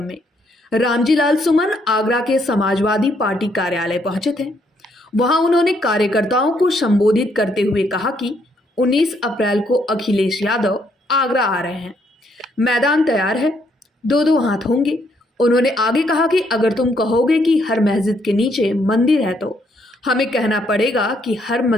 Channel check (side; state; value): both; normal; correlation 0.72